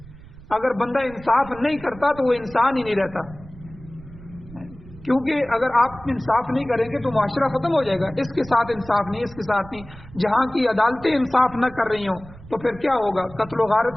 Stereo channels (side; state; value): right; noise; rumble, 19 dB below the sound